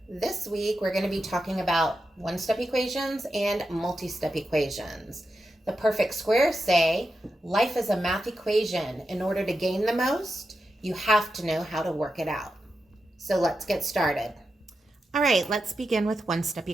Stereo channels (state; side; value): normal; both; correlation 0.89